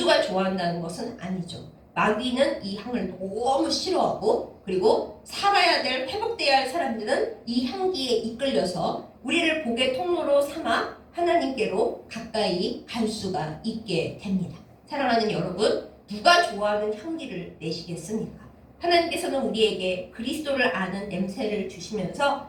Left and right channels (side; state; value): both; identical; correlation 1.00